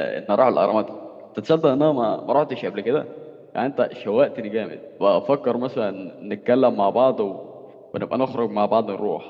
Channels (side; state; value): both; identical; correlation 1.00